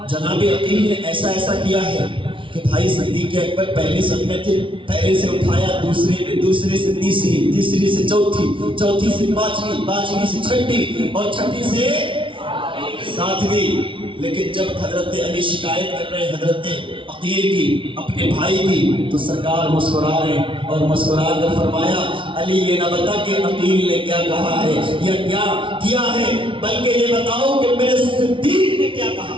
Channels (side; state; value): left; late; 0.25 ms